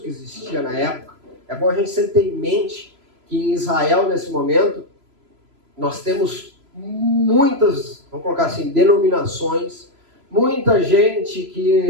que existia na época. É bom a gente sempre ter em mente que em Israel, nesse momento, nós temos muitas, vamos colocar assim, denominações, muita gente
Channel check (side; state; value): left; late; 3.0 ms